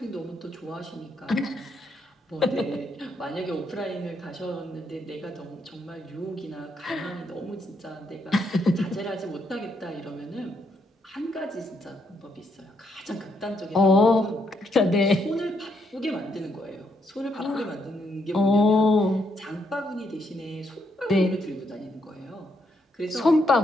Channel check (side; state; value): both; normal; correlation 0.76